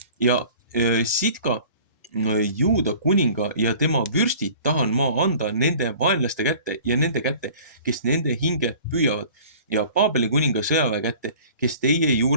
Ja Sidka Juuda kuninga ja tema vürstid tahan ma anda nende vaenlaste kätte ja nende kätte, kes nende hinge püüavad ja Paabeli kuninga sõjaväe kätte, kes teie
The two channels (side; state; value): both; inverted; correlation -0.47